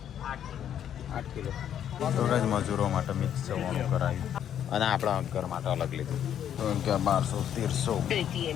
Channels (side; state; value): right; quieter; 9.7 dB